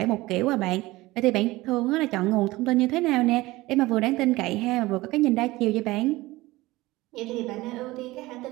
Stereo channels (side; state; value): left; quieter; 19.4 dB